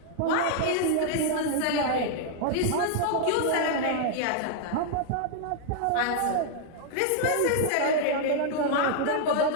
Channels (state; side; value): different; both; correlation -0.01